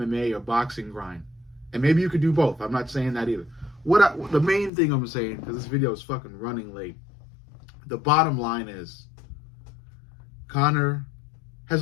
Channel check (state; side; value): drops out; right; at 4.7 s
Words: or boxing grind. And maybe you could do both. I'm not saying that either. The main thing I'm saying, because this video is fucking running late. The bottom line is, Conor